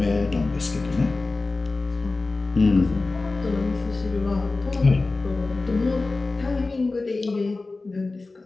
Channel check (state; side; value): quieter; right; 3.4 dB